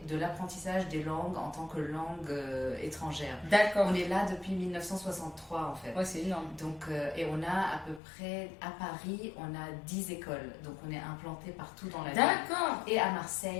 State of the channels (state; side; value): drops out; right; at 8.0 s